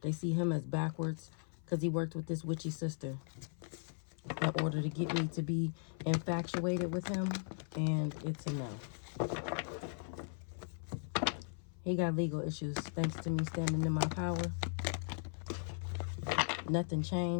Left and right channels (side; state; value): right; silent; 53 dB below the other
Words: They see him as backwards because he worked with this witchy sister in order to get me to be infatuated with him, and it's a no. He got legal issues thanks to me standing in my power. Nothing